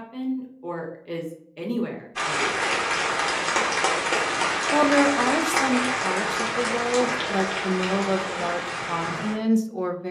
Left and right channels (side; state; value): both; identical; correlation 1.00